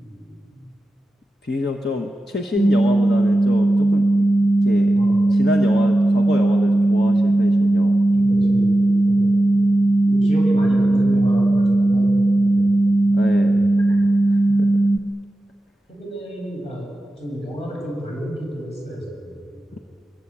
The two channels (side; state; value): both; normal; correlation 0.93